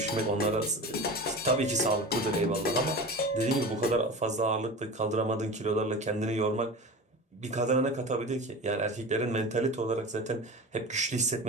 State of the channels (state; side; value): normal; both; correlation 0.32